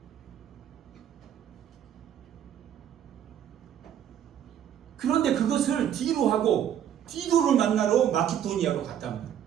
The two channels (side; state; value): left; quieter; 9.8 dB